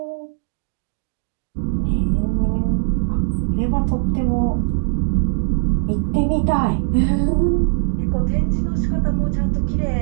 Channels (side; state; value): left; silent; digital silence